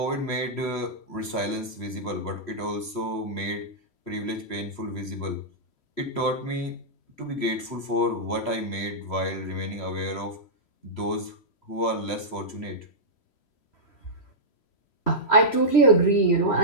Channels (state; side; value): late; right; 3.1 ms